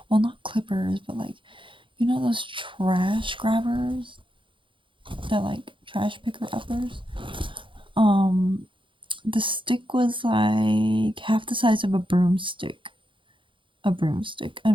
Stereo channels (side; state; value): left; late; 0.24 ms